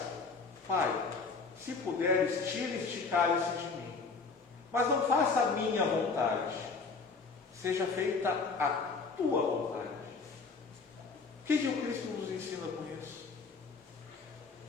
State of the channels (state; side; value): quieter; right; 4.5 dB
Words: Pai, se puderes, tira este cálice de mim, mas não faça a minha vontade, seja feita a tua vontade. O que o Cristo nos ensina com isso?